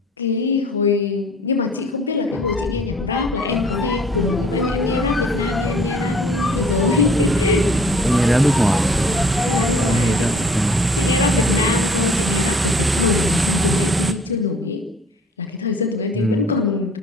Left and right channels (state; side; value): normal; both; correlation 0.54